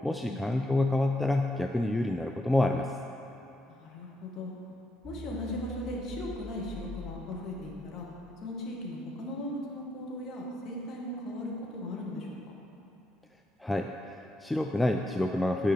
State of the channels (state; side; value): normal; both; correlation 0.79